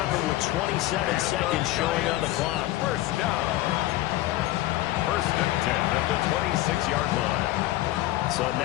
it with 27 seconds showing on the clock. First down. 1st and 10 at the 26-yard line. So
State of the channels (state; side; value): quieter; right; 16.1 dB